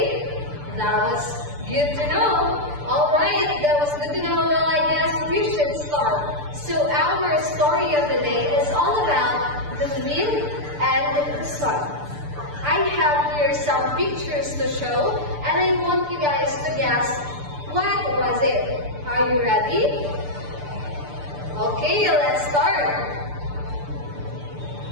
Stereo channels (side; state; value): left; late; 6.8 ms